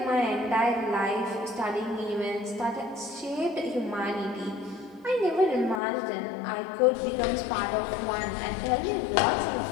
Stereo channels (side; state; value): right; drops out; at 5.8 s